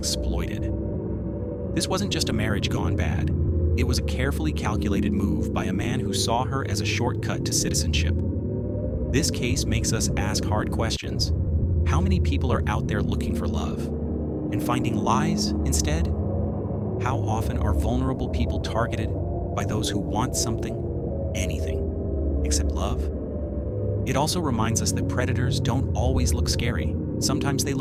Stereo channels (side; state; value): both; identical; correlation 1.00